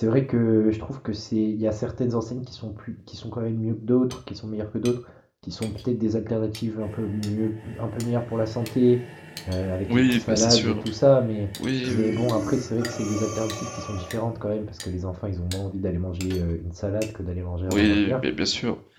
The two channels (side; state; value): both; identical; correlation 1.00